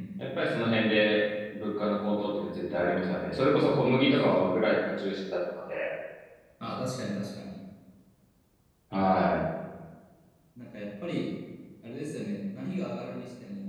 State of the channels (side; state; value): both; identical; correlation 1.00